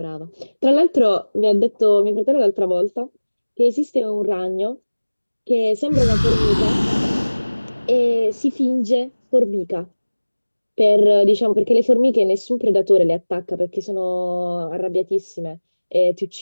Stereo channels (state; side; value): inverted; both; correlation -1.00